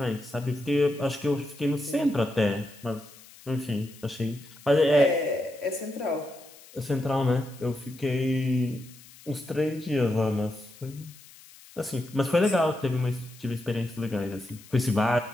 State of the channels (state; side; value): noise; left; hiss, 22 dB below the sound